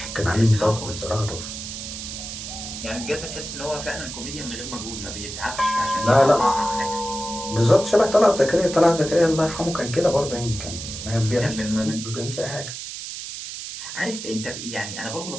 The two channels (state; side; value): noise; right; hiss, 8 dB below the sound